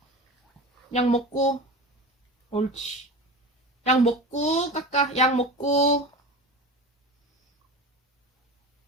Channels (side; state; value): both; normal; correlation 0.31